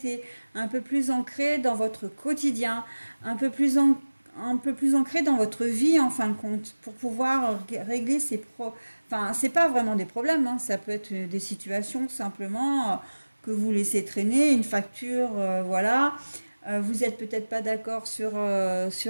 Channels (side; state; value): both; inverted; correlation -1.00